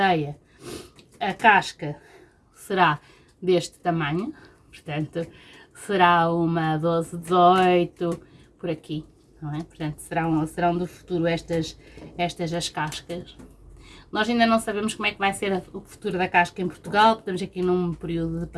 a casca será deste tamanho, portanto será uma 12, 18, por aqui. Não é? Portanto, serão do futuro estas as cascas. Nós ainda não sabemos como é que vai ser o futuro da casca em Portugal, estamos aqui num período de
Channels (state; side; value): identical; both; correlation 1.00